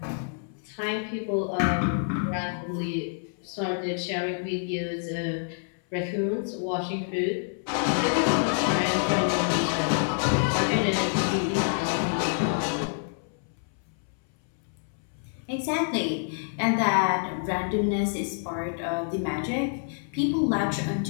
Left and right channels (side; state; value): right; silent; 60 dB below the other